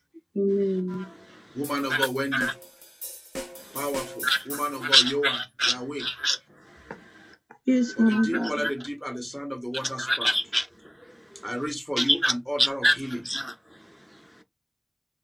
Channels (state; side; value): identical; both; correlation 1.00